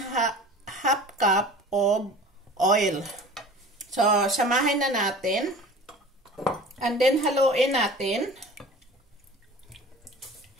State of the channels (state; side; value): normal; both; correlation 0.41